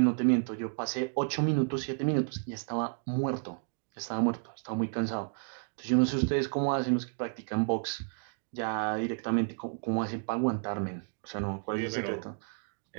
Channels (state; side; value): silent; left; 57 dB below the other